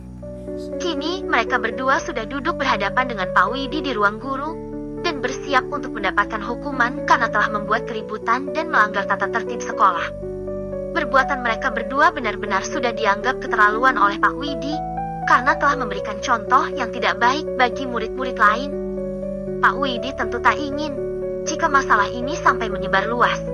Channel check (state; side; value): identical; both; correlation 1.00